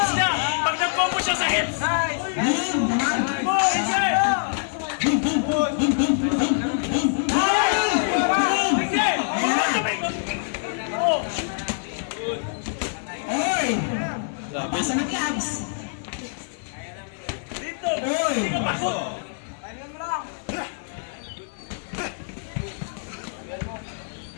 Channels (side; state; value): right; silent; 62 dB below the other